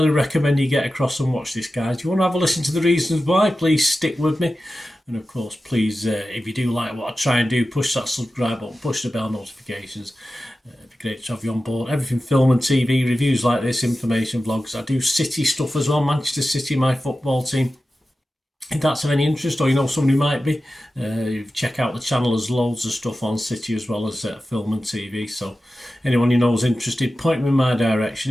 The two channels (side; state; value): both; normal; correlation 0.94